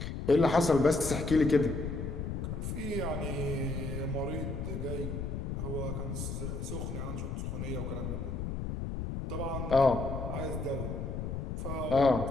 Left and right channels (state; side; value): noise; left; rumble, 4 dB below the sound